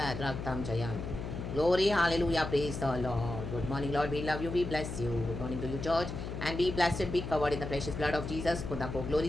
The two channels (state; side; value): noise; left; hum, 6 dB below the sound